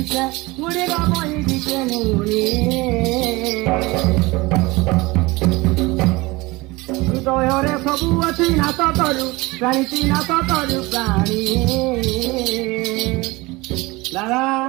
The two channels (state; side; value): quieter; left; 22.6 dB